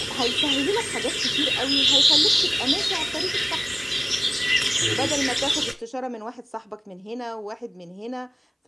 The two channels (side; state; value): both; identical; correlation 1.00